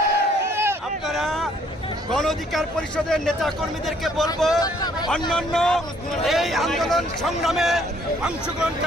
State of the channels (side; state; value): both; normal; correlation 0.63